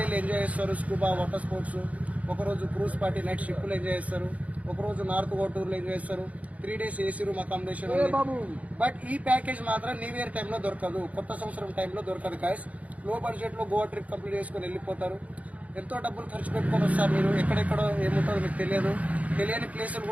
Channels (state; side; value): late; left; 0.069 ms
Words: ఎంజాయ్ చేస్తారు. స్కూబా వాటర్ స్పోర్ట్స్, ఒకరోజు క్రూజ్ పార్టీ నైట్ షిప్లు ఎంజాయ్ చేస్తారు, ఒకరోజు నార్త్ గోటూరులో ఎంజాయ్ చేస్తారు. 3 days AC room accommodation. But ఈ ప్యాకేజ్ మాత్రం న్యూ ఇయర్ టైంలో దొరకదు, కొత్త సంవత్సరం టైంలో దొరకదు. గాయస్, లో బడ్జెట్ లో గోవా ట్రిప్ కంప్లీట్ చేసుకుని వెళ్ళిపోతారు. ఎంతో డబ్బులు ఖర్చు పెట్టుకొని వస్తారు. మీరు ఎక్కడెక్కడో ఏముంటారో మీకు తెలియదు, తెలియని ప్లేసులు